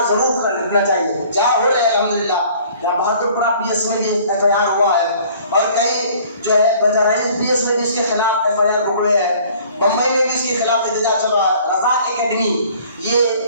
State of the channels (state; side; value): inverted; both; correlation -0.53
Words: ضرور کرنا چاہیے. جہاں ہو رہے الحمدللہ, جہاں بہادر پورہ PS میں بھی FIR ہوا ہے اور کئی جو ہے بجرائز PS میں بھی اس کے خلاف FIR پکڑے ہیں. بمبئی میں بھی اس کے خلاف احتجاج چل رہا ہے. رفاق اکیڈمی, یہ